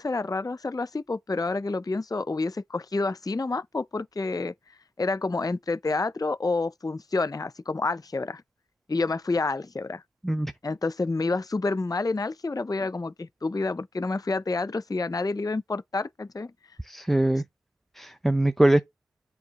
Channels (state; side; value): normal; both; correlation 0.88